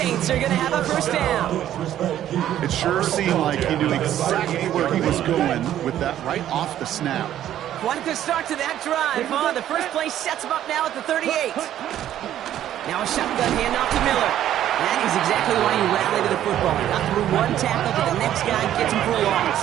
are going to have a first down. It sure seemed like he knew exactly where he was going with that right off the snap. Quite a start to that drive, huh? The first play sets him up now at the 38. Now a shotgun handoff to Miller. That is exactly why you rally to the football. He got through one tackle, but the next guy gets him for a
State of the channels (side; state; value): left; quieter; 11.7 dB